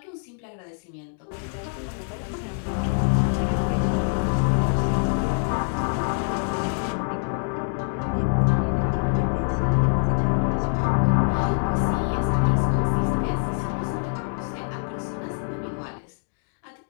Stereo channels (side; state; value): right; silent; digital silence